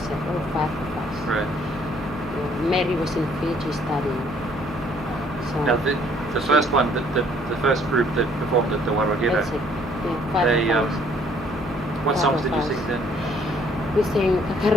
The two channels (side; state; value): both; normal; correlation 0.62